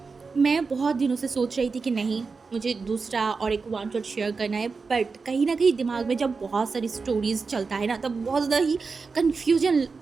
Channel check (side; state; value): left; quieter; 4.6 dB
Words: मैं बहुत दिनों से सोच रही थी कि नहीं, मुझे दूसरा और एक वन शॉट शेयर करना है, बट कहीं ना कहीं दिमाग में जब बहुत सारी स्टोरीज चलता है ना तब बहुत ज़्यादा ही कन्फ्यूजन